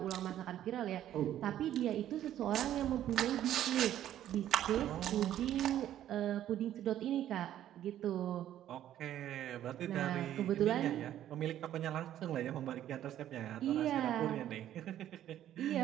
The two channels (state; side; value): quieter; left; 11.8 dB